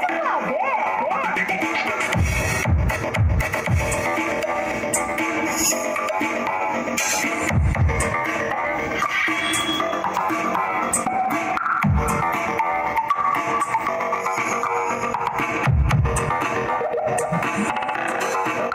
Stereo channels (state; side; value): identical; both; correlation 1.00